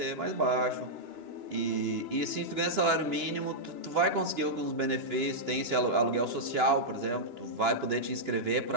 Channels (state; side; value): late; left; 2.9 ms